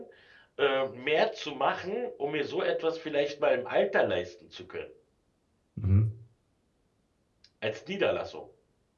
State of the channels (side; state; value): both; identical; correlation 1.00